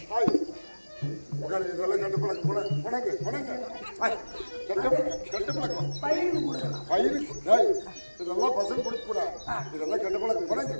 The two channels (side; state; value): both; inverted; correlation -1.00